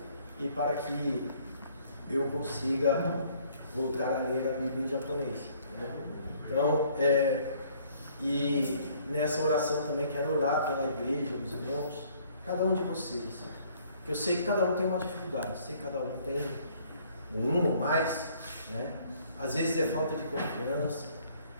e para que eu consiga voltar a ler a Bíblia em japonês. Então, e nessa oração também quero orar pela igreja, meus irmãos, cada um de vocês. Eu sei que cada um tem uma dificuldade, sei que cada um tem um ou mais, né? Às vezes é falta de confiança,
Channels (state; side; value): inverted; both; correlation -0.60